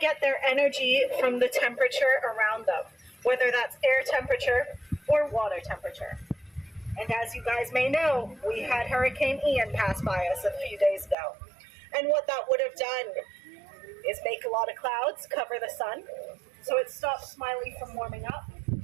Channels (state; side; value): drops out; left; at 11.2 s